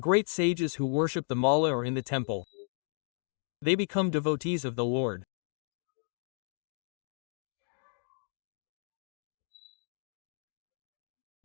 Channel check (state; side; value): silent; right; 55 dB below the other